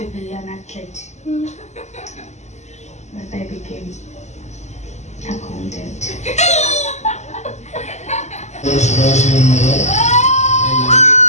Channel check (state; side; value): late; right; 0.33 ms